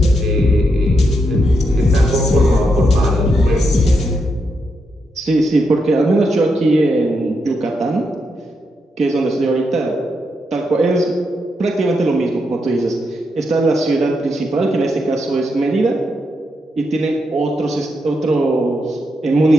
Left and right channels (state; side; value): normal; both; correlation 0.82